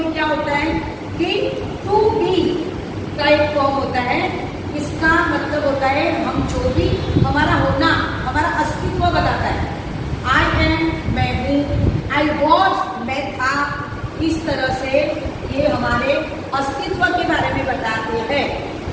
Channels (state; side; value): identical; both; correlation 1.00